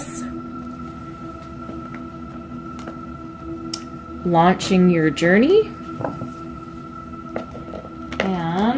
launching your journey,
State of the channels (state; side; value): identical; both; correlation 1.00